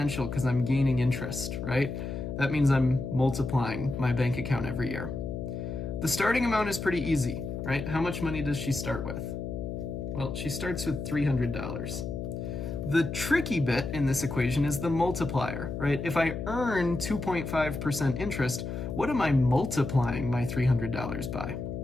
because I'm gaining interest, right? That means I'm multiplying my bank account every year. The starting amount is pretty easy, right? How much money does she start with? Well, she starts with $300. The tricky bit in this equation is the multiplier, right? If I earn 2.5% interest, what am I multiplying my $300 by?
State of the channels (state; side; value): noise; left; hum, 5 dB below the sound